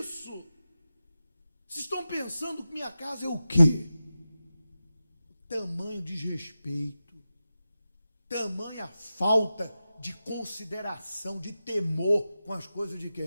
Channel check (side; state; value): both; inverted; correlation -0.92